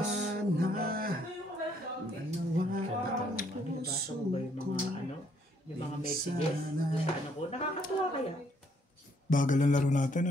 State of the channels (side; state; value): both; normal; correlation 0.68